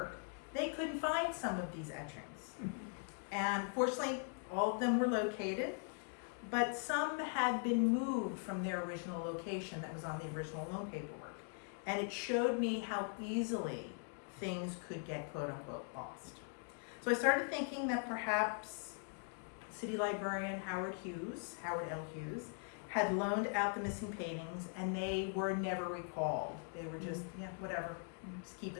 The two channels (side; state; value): right; silent; 50 dB below the other